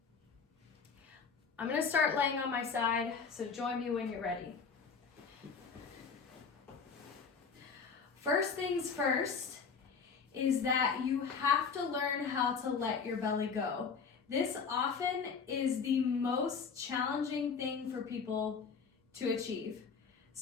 I'm going to start laying on my side, so join me when you're ready. First things first is that you have to learn how to let your belly go. This often is the most challenging thing for people to achieve.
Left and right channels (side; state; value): right; quieter; 5.6 dB